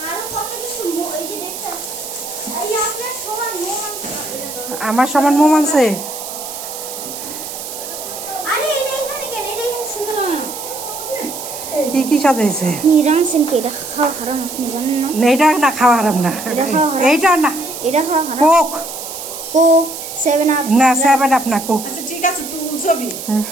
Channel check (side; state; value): right; noise; hiss, 9 dB below the sound